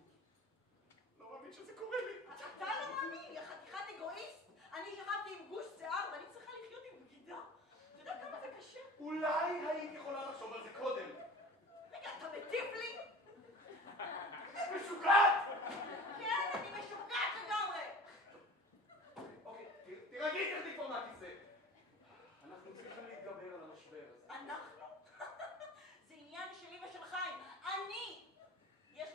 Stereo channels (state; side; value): normal; both; correlation 0.40